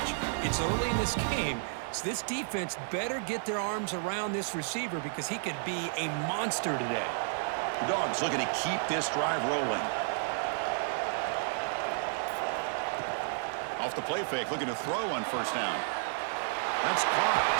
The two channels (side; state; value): left; silent; 57 dB below the other